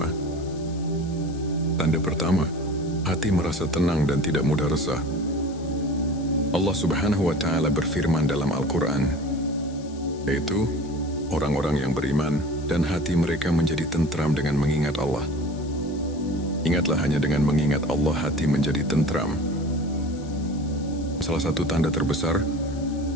Tanda pertama, hati merasa tenang dan tidak mudah resah. Allah Subhanahu wa Ta'ala berfirman dalam Al-Quran, yaitu orang-orang yang beriman dan hati mereka menjadi tentram dengan mengingat Allah. Ingatlah, hanya dengan mengingat Allah hati menjadi tentram. Salah satu tanda terbesar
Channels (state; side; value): noise; left; hiss, 22 dB below the sound